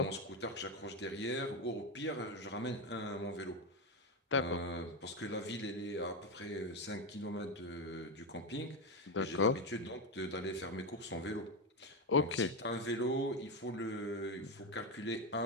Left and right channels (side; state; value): both; normal; correlation 0.11